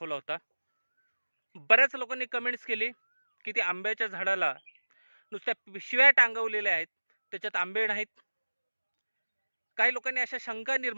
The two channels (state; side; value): inverted; both; correlation -1.00